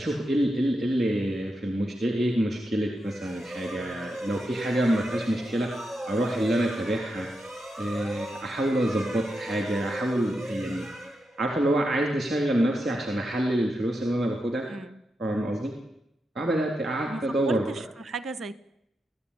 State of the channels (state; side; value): normal; both; correlation 0.86